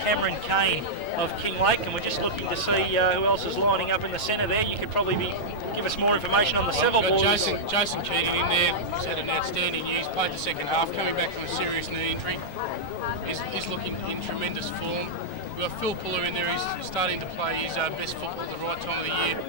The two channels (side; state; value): right; late; 9.1 ms